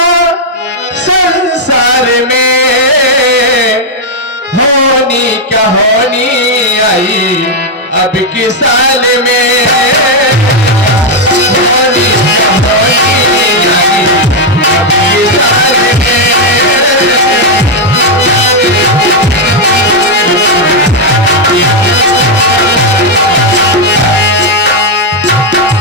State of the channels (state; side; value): normal; both; correlation 0.00